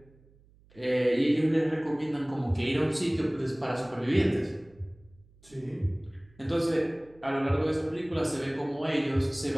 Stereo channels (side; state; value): right; noise; hum, 28 dB below the sound